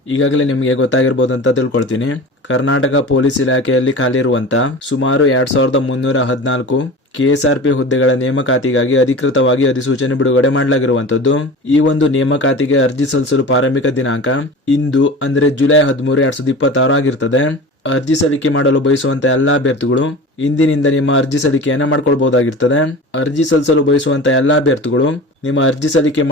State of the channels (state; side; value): normal; both; correlation 0.35